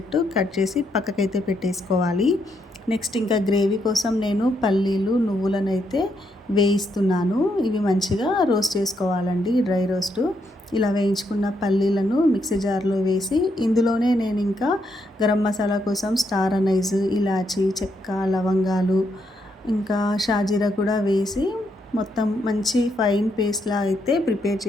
కట్ చేసి పక్కకైతే పెట్టేసుకోవాలి. నెక్స్ట్ ఇంకా గ్రేవీ కోసం నేను పల్లీలు నువ్వులను అయితే వేయిస్తున్నాను. ఇవి మంచిగా రోస్ట్ చేసుకోవాలండి, డ్రై రోస్ట్. ఇలా వేయించుకున్న పల్లీలను మిక్సీ జార్లో వేసి ఇందులోనే నేను ఇంకా గరం మసాలా కోసం స్టార్ అనైజ్, ఇలాచి, చెక్క, లవంగాలు, ఇంకా షాజీరా కూడా వేసి మొత్తం మంచి ఫైన్ పేస్ట్లా అయితే ప్రిపేర్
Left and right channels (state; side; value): normal; both; correlation 0.78